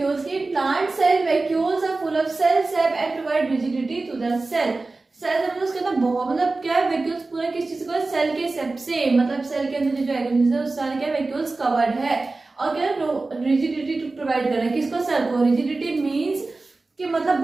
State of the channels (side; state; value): left; quieter; 3.5 dB